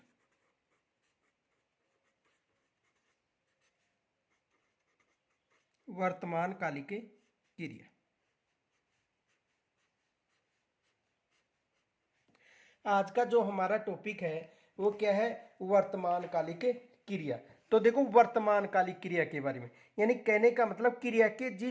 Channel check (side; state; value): both; identical; correlation 1.00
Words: वर्तमान कालिक क्रिया। आज का जो हमारा टॉपिक है वो क्या है? वर्तमान कालिक क्रिया। तो देखो, वर्तमान कालिक क्रिया के बारे में, यानी कहने का मतलब क्रिया के